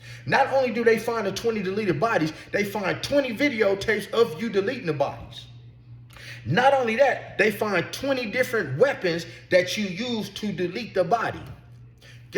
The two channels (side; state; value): both; identical; correlation 1.00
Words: Not only do they find the 20 deleted bodies, they find 20 videotapes of you deleting the bodies. Not only that, they find 20 different weapons that you used to delete the body.